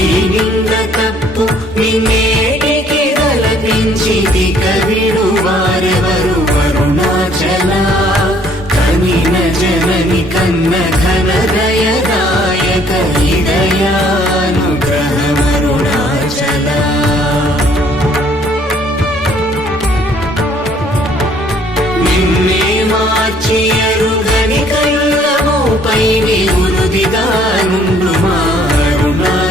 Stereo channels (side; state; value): both; normal; correlation 0.61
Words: నింద తప్పు నిన్నేటికి తలపించితి కవిడు వారెవరు అరుణాచల కనిన జనని కన్న ఘన దయదాయక హృదయానుగ్రహమరుణాచల నిన్నే మార్చి అరుగని కళ్ళముపై నివృదిగా నుండు మా